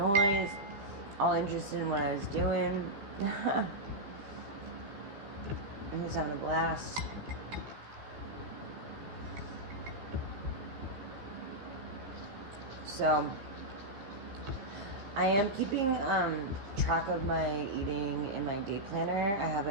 all interested in what I was doing. He was having a blast. So I am keeping track of my eating in my day planner. I have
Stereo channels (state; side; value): late; left; 15 ms